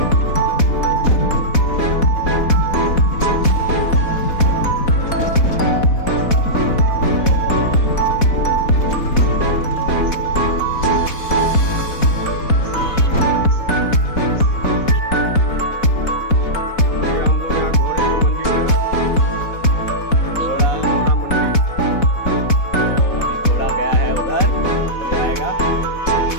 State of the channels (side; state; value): right; late; 4.1 ms